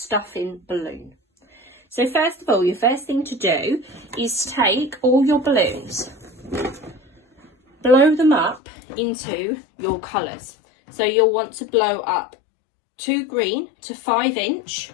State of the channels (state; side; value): drops out; right; at 8.6 s